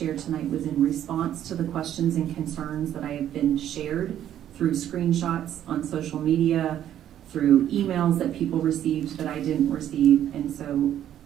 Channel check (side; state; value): left; quieter; 11.0 dB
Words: tonight was in response to the questions and concerns that I have been shared through screenshots on social media, through emails that people received that I didn't receive. And so